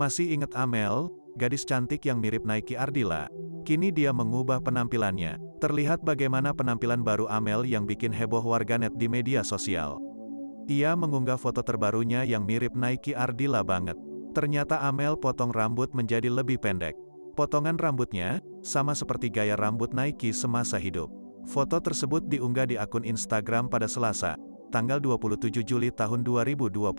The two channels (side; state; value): both; inverted; correlation -1.00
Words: ingat Amel, gadis cantik yang mirip Nike Ardilla? Kini dia mengubah penampilannya. Terlihat bagaimana penampilan baru Amel yang bikin heboh warganet di media sosial. Ia mengunggah foto terbarunya yang mirip Nike Ardilla banget. Ternyata Amel potong rambut menjadi lebih pendek. Potongan rambutnya sama seperti gaya rambut Nike semasa hidup. Foto tersebut diunggah di akun Instagram pada Selasa, tanggal 27 Juli tahun